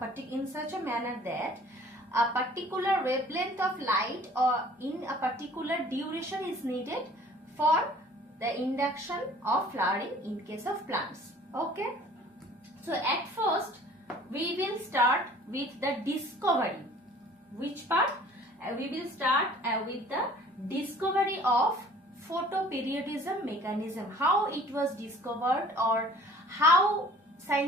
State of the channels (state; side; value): normal; both; correlation 0.51